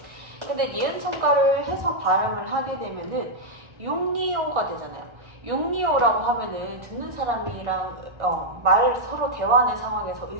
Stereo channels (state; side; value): late; left; 1.4 ms